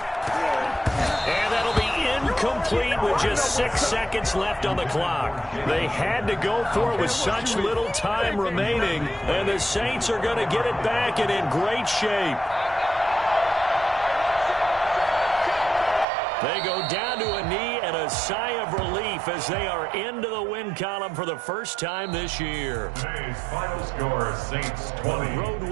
And that'll be incomplete with just 6 seconds left on the clock. They had to go for it with such little time remaining, and the Saints are going to get it back and in great shape. They go down to a knee and a sigh of relief as they are into the win column for the first time this year. Today's final score, Saints 20. Road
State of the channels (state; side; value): drops out; left; at 16.1 s